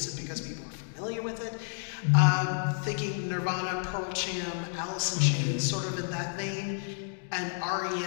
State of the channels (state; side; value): silent; right; digital silence